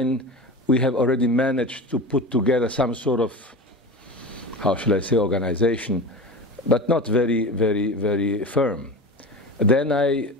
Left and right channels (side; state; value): both; normal; correlation 0.29